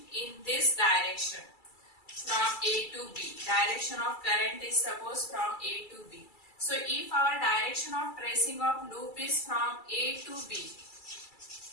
in this direction from A to B. Direction of current is suppose from A to B. So if our direction of tracing of loop is from A to B,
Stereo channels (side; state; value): right; late; 2.3 ms